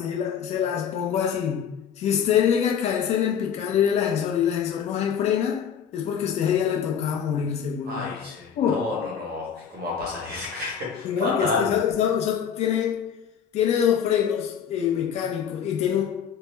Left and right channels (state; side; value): quieter; right; 7.8 dB